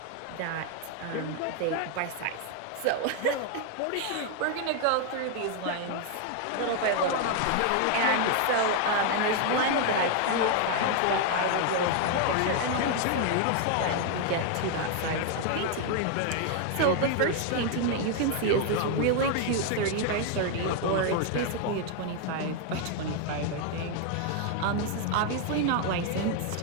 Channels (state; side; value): different; both; correlation 0.00